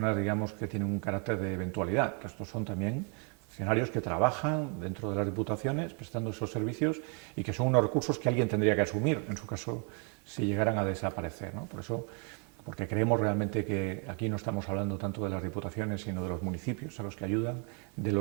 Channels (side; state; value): left; quieter; 38.3 dB